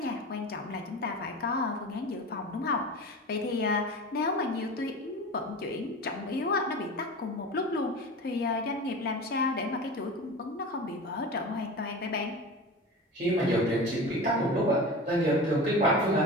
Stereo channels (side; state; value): both; normal; correlation 0.31